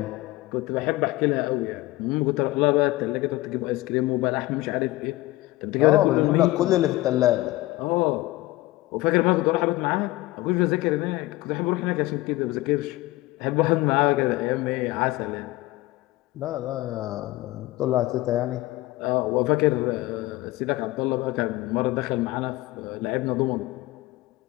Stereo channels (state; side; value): quieter; right; 18.7 dB